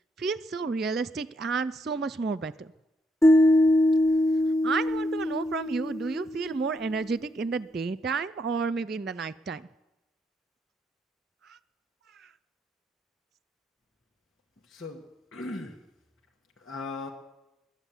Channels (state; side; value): normal; both; correlation 0.77